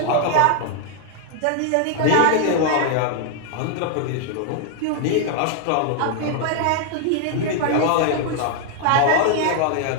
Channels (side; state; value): both; different; correlation 0.00